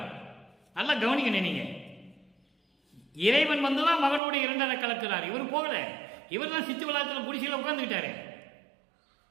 நல்லா கவனிக்கணும் நீங்க. இறைவன் வந்துதான் மகனோடு 2 கலக்கிறார். இவர் போகல. இவர் தான் சித்து விழாத்தில் குடிசையில் உட்கார்ந்துக்கிட்டாரு.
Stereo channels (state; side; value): drops out; left; at 4.2 s